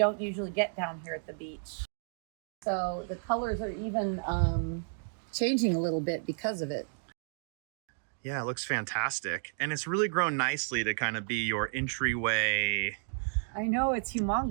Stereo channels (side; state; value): left; silent; digital silence